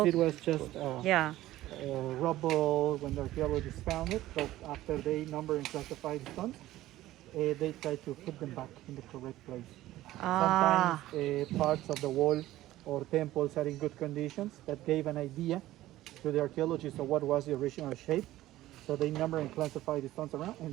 Oh. it was just Yeah. rubble when the archaeologists found it. But after they number and classify the stones, they try to put them back in the correct place. Sometimes parts of the wall or temples are in good conditions that gave an idea to the archaeologists of what was the original shape. So they number and classify the stones around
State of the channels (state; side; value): quieter; left; 15.4 dB